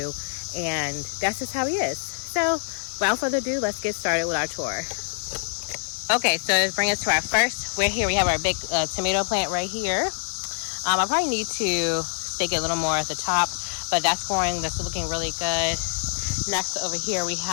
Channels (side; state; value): right; silent; 62 dB below the other